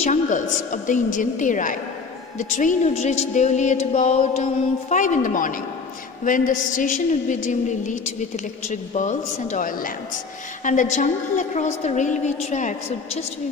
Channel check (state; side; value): quieter; right; 4.8 dB